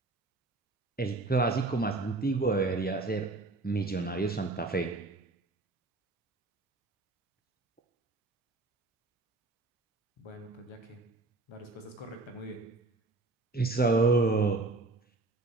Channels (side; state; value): left; quieter; 3.3 dB